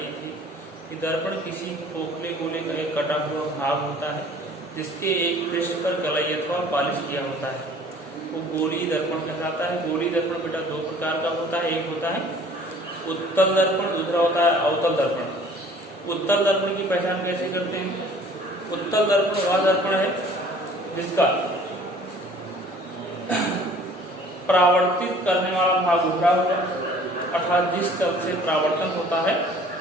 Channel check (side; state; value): both; normal; correlation 0.52